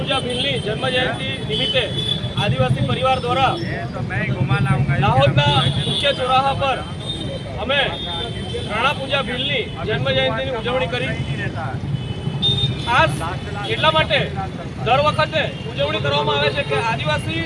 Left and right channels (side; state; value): both; identical; correlation 1.00